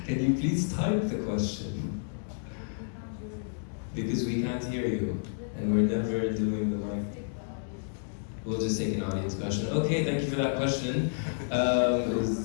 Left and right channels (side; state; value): right; silent; digital silence